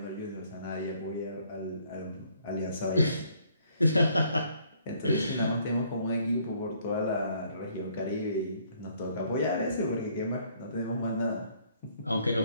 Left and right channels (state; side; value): inverted; both; correlation -0.64